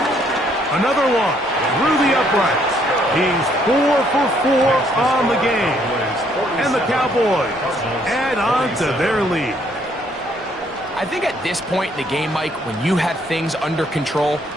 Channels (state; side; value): normal; both; correlation 0.67